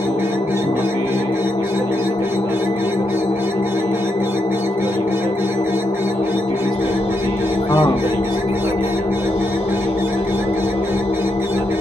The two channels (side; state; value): both; normal; correlation 0.82